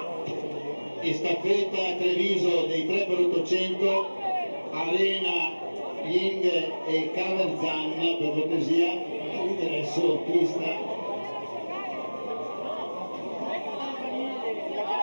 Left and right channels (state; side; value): inverted; both; correlation -1.00